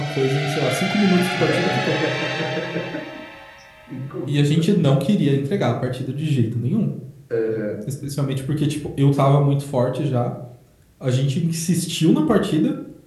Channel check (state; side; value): identical; both; correlation 1.00